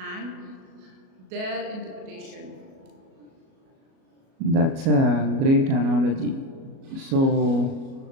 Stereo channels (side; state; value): left; late; 37 ms